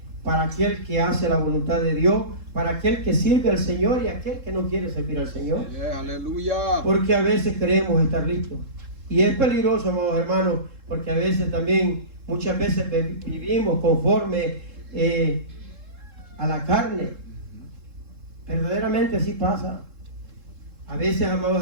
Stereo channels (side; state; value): left; late; 3.7 ms